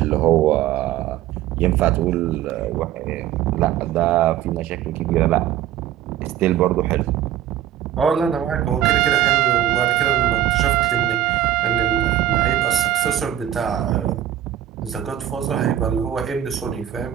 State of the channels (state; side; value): quieter; left; 11.8 dB